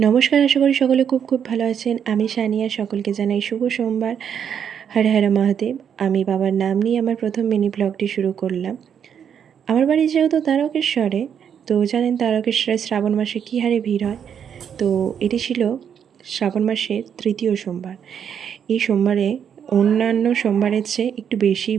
আশা করি সকলে খুব খুব ভালো আছেন। আমি সানিয়া, সকলকে জানাই শুভ সোমবার। হর হর মহাদেব। আমি বাবার নাম নিয়ে আমার প্রথম মিনি ব্লগটি শুরু করলাম। আমার বাড়ি যেহেতু তারকেশ্বরে, তো জানেন তারকেশ্বরে শ্রাবণ মাসে কী হারে ভিড় হয়। তো এটি ছিল শ্রাবণ মাসের তৃতীয় সোমবার। এই সোমবারে অন্যান্য সোমবারের চেয়ে একটু বেশি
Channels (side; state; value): left; quieter; 8.1 dB